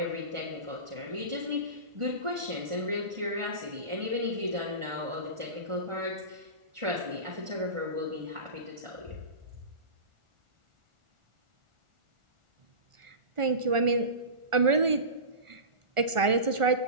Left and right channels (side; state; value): left; late; 1.4 ms